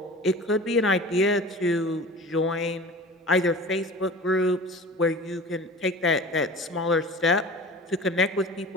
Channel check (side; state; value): both; normal; correlation 0.38